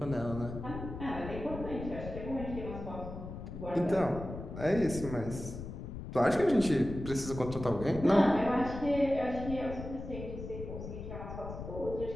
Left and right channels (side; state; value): left; noise; rumble, 9 dB below the sound